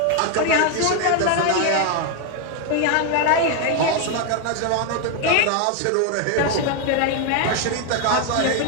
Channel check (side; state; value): both; different; correlation 0.01